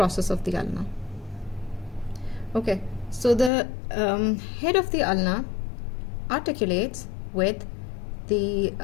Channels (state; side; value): drops out; right; at 3.5 s